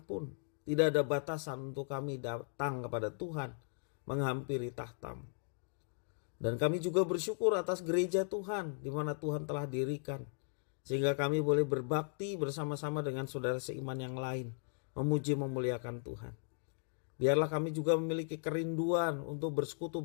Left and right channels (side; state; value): right; silent; digital silence